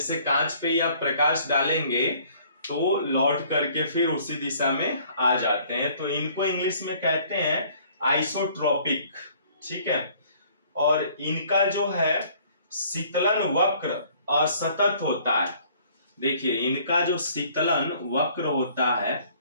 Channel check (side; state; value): both; inverted; correlation -0.57